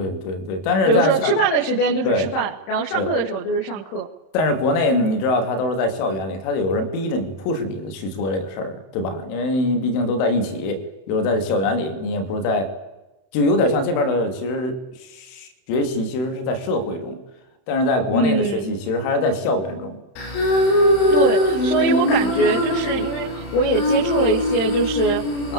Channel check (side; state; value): right; late; 31 ms